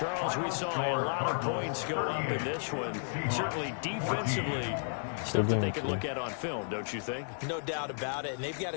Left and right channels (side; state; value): right; silent; 56 dB below the other